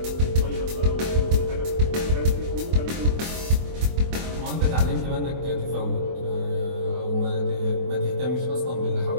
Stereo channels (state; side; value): late; left; 24 ms